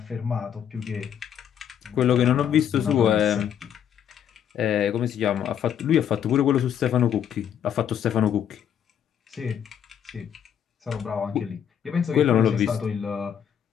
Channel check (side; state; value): right; quieter; 9.0 dB